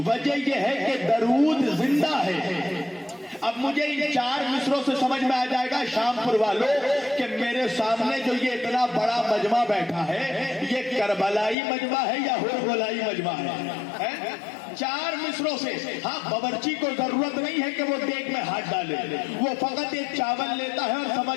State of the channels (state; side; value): drops out; right; at 11.6 s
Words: یہ ہے کہ درود زندہ ہے. اب مجھے ان 4 مصروں سے سمجھ میں آ جائے گا شام پور والوں کہ میرے سامنے جو یہ اتنا بڑا مجمع بیٹھا ہے یہ کربلائی مجمع ہے یا ہربلائی مجمع ہے. 4 مصروں سے. ہاں باورچی کو ضرورت نہیں ہے کہ وہ دیگ میں ہاتھ ڈالے، وہ فقط ایک چاول لیتا ہے اور